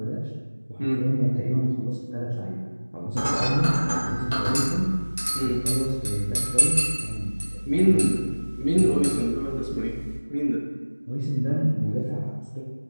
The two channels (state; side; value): inverted; both; correlation -1.00